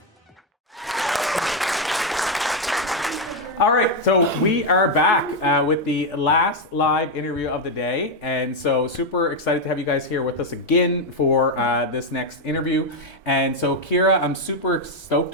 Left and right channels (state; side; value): normal; both; correlation 0.04